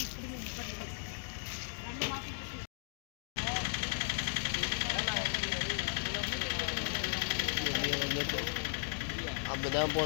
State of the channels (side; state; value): right; silent; digital silence